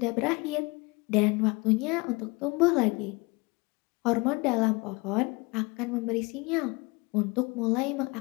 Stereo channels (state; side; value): quieter; right; 26.6 dB